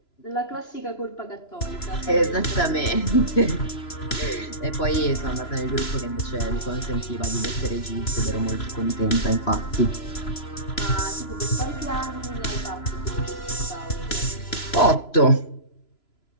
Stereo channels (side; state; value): right; late; 3.0 ms